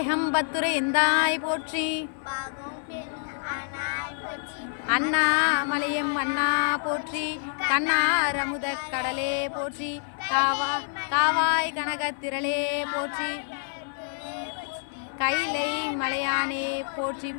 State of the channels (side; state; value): right; silent; 58 dB below the other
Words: எந்தாய் போற்றி. அண்ணாமலையம் அண்ணா போற்றி. கண்ணார் அமுத கடலே போற்றி. காவாய் கனகத்திரளே போற்றி. கைலை மலையானே போற்றி